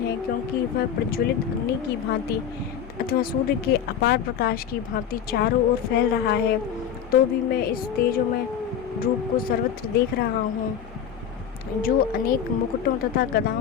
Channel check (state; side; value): quieter; right; 8.6 dB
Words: क्योंकि वह प्रज्वलित अग्नि की भांति अथवा सूर्य के अपार प्रकाश की भांति चारों ओर फैल रहा है। तो भी मैं इस तेजोमय रूप को सर्वत्र देख रहा हूँ जो अनेक मुकुटों तथा